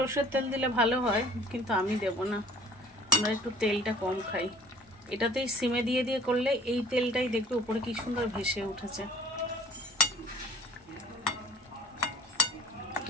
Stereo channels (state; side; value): normal; both; correlation 0.51